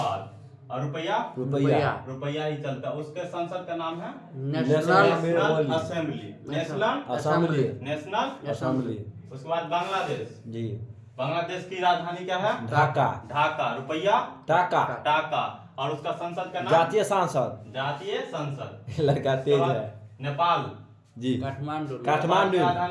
और रुपया ही चलता है। उसके संसद का नाम है नेशनल असेंबली। उसके बाद बांग्लादेश की राजधानी क्या है? ढाका। रुपया टाका। और उसका संसद का नाम जातीय संसद। लड़का तेज है। नेपाल जी। काठमांडू।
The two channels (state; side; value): identical; both; correlation 1.00